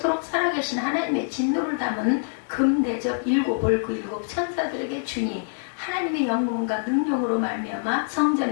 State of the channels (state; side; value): silent; right; digital silence